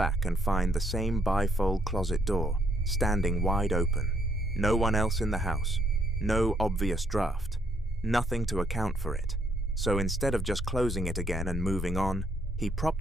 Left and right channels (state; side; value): normal; both; correlation 0.70